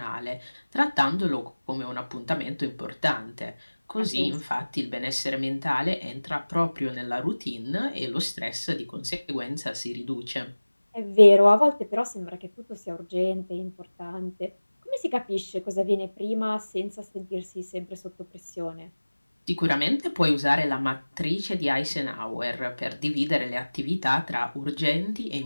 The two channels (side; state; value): both; inverted; correlation -1.00